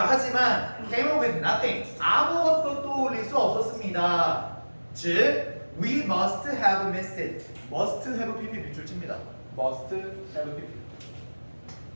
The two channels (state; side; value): inverted; both; correlation -1.00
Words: 하지만 came up with nothing. 아무것도 떠올릴 수 없었습니다. 즉, we must have missed it. must have pp 밑줄 칩니다. must have pp.